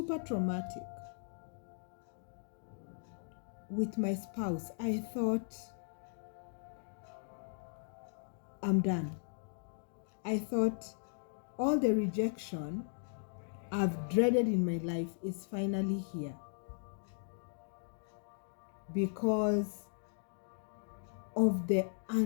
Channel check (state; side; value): silent; right; digital silence